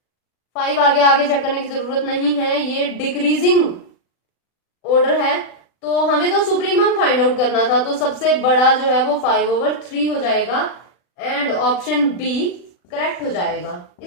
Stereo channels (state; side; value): late; right; 40 ms